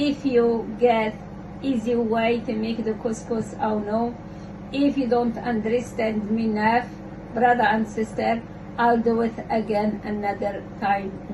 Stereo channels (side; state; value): both; identical; correlation 1.00